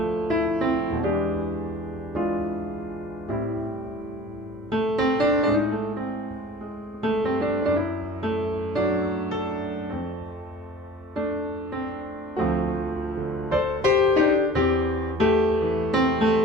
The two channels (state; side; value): normal; both; correlation 0.45